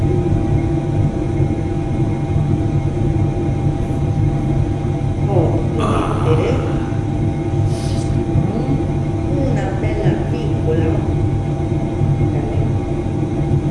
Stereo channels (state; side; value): identical; both; correlation 1.00